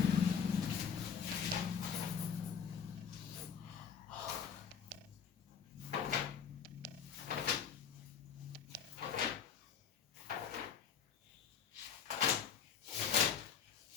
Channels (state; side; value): quieter; right; 7.3 dB